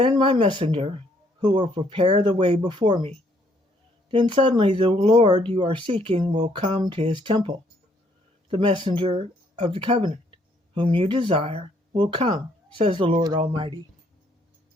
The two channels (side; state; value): both; normal; correlation 0.68